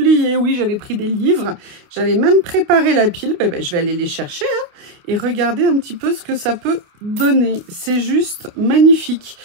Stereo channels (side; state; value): left; late; 28 ms